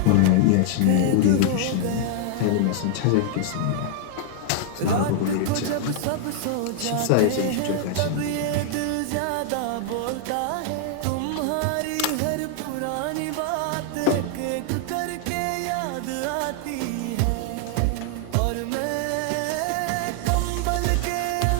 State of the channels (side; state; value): both; different; correlation 0.00